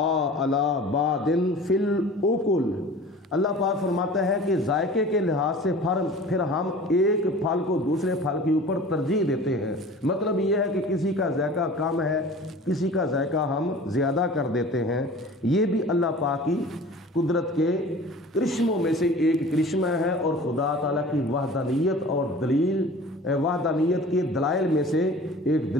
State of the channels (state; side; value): normal; both; correlation 0.42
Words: عَلَى بَعْضٍ فِي الْأُكُلِ، اللہ پاک فرماتا ہے کہ ذائقے کے لحاظ سے پھر ہم ایک پھل کو دوسرے پھل کے اوپر ترجیح دیتے ہیں۔ مطلب یہ ہے کہ کسی کا ذائقہ کم ہے، کسی کا ذائقہ ہم زیادہ کر دیتے ہیں۔ یہ بھی اللہ پاک کی قدرت کے کرشموں میں سے ایک کرشمہ ہے، اور خدا تعالیٰ کی وحدانیت اور وحدانیت کے دلائل میں سے ایک